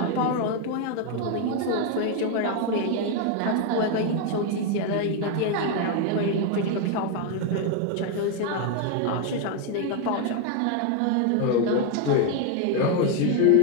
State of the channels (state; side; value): different; both; correlation 0.01